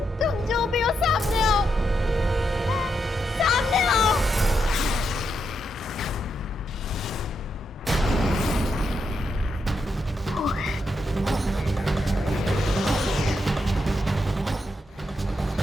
तुम जो भी हो सामने आओ, सामने आओ।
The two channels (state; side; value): normal; both; correlation 0.82